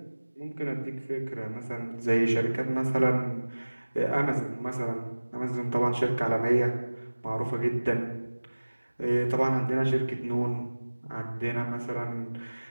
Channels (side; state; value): both; inverted; correlation -1.00